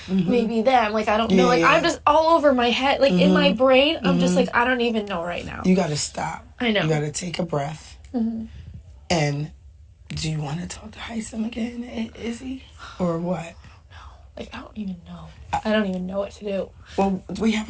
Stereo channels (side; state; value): both; identical; correlation 1.00